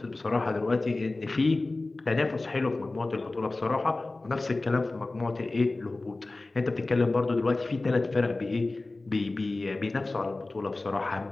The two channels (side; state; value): right; quieter; 3.2 dB